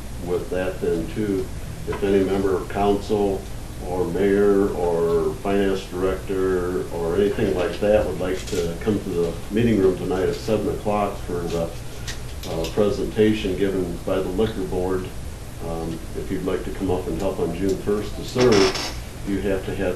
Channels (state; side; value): identical; both; correlation 1.00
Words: with that then too, if any member of council or mayor or finance director or anything like that would like to come to the meeting room tonight at 7 o'clock for the presentation given by the liquor board, if you'd like to come up and help on June 1st to serve, you have to